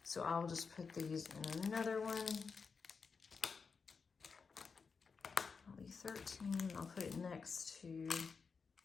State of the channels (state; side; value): quieter; right; 5.2 dB